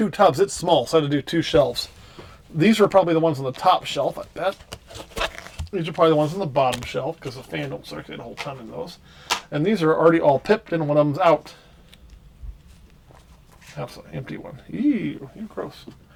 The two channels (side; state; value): both; identical; correlation 1.00